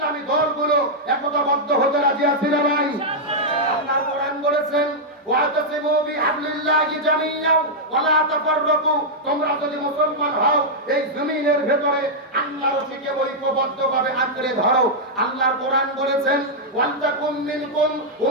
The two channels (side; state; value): both; normal; correlation -0.06